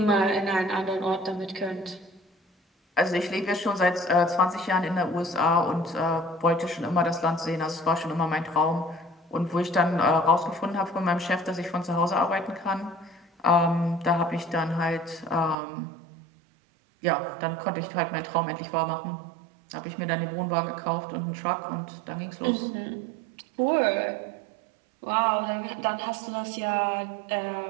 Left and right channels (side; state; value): left; drops out; at 15.6 s